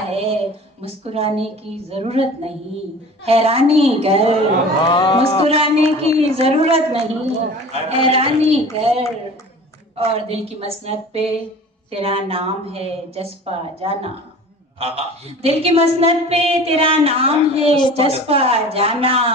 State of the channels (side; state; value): both; normal; correlation 0.41